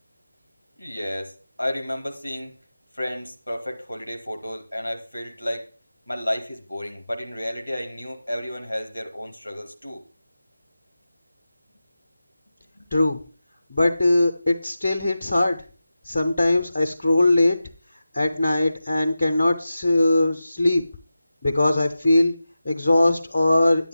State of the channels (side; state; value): both; inverted; correlation -0.93